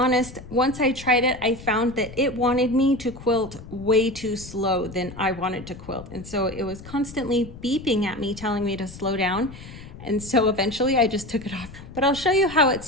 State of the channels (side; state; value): left; noise; rumble, 15 dB below the sound